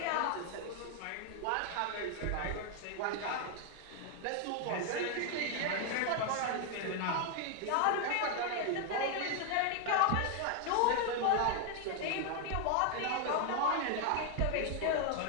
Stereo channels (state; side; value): different; both; correlation 0.00